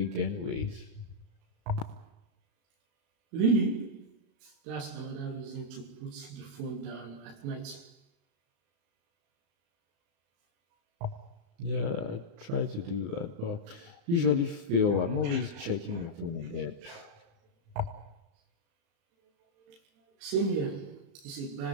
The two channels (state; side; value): late; left; 35 ms